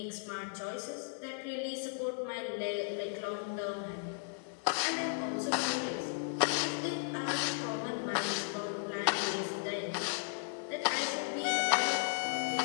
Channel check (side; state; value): right; silent; digital silence